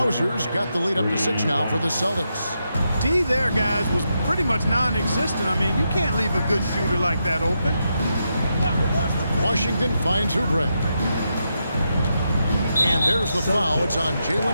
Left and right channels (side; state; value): both; inverted; correlation -0.84